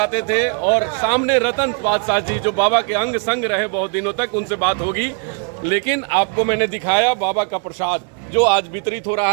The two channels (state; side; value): quieter; left; 38.7 dB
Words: थे और सामने रतन बादशाह जी जो बाबा के अंग संग रहे बहुत दिनों तक, उनसे बात होगी। लेकिन आपको मैंने दिखाया बाबा का प्रसाद जो आज वितरित हो